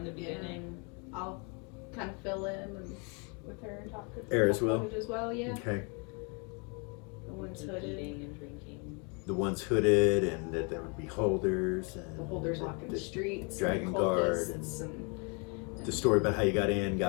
the beginning. I'll kind of fill in and with her and talk with Air as her well? as well, yeah. Okay. The one's And hooded. eating and drinking. The ones hooded, and that there would be holders, and The holders walking the streets. Dragon and Guard, cultists and the story about how you got in,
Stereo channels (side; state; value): right; quieter; 34.4 dB